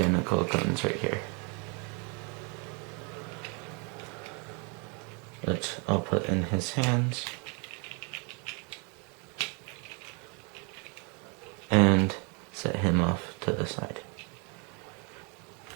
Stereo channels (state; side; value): quieter; left; 34.0 dB